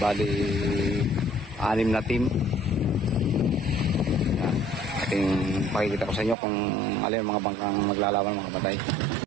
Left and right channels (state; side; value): drops out; left; at 6.4 s